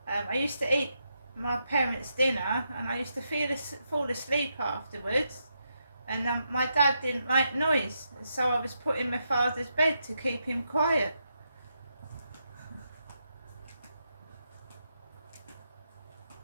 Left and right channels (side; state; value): both; inverted; correlation -0.83